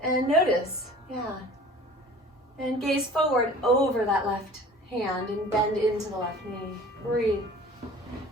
and notice. Yeah. And gaze forward over that left hand and bend into the left knee. Breathe.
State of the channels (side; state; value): both; normal; correlation 0.45